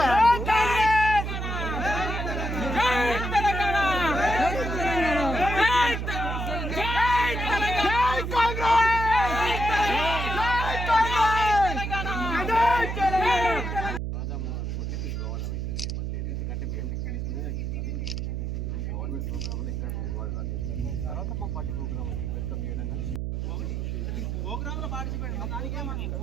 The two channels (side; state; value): right; noise; hum, 3 dB below the sound